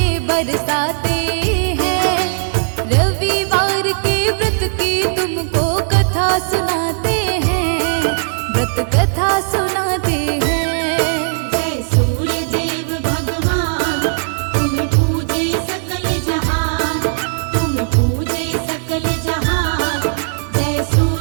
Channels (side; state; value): left; silent; digital silence